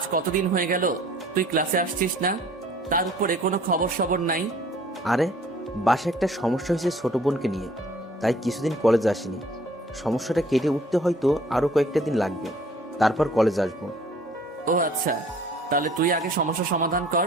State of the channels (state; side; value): normal; both; correlation 0.54